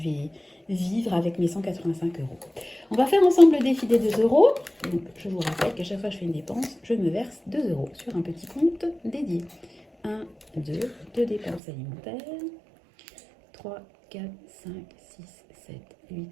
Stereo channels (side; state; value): left; drops out; at 11.6 s